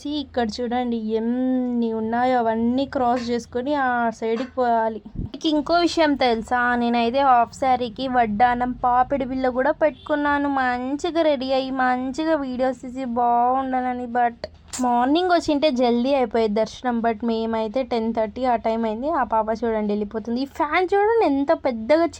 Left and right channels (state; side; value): identical; both; correlation 1.00